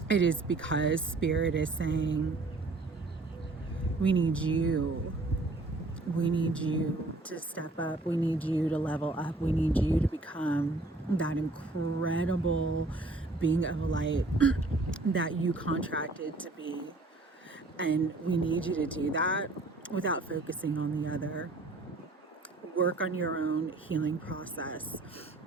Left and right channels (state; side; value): quieter; left; 3.1 dB